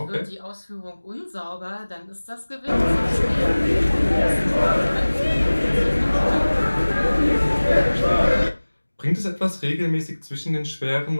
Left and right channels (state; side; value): inverted; both; correlation -1.00